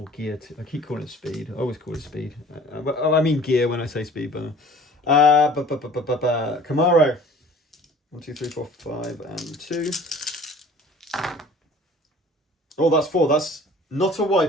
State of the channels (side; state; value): both; normal; correlation 0.48